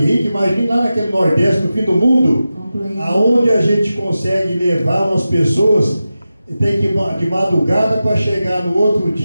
rica, imagine lá naquele Nordeste, no fim do mundo, aonde a gente consegue levar umas pessoas, tem que ir de madrugada para chegar no outro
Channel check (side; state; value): both; inverted; correlation -0.93